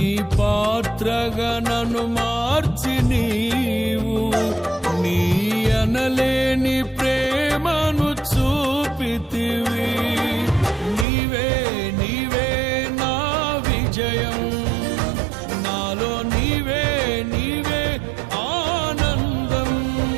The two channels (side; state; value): left; drops out; at 11.1 s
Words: పాత్రగా నన్ను మార్చి నీవు నీ అనలేని ప్రేమను చూపితివి. నీవే నీవే నా విజయం, నాలో నీవే నీవే ఆనందం.